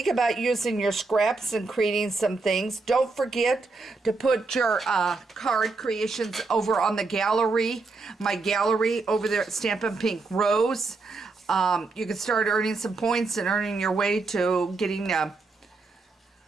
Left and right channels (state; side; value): quieter; left; 3.8 dB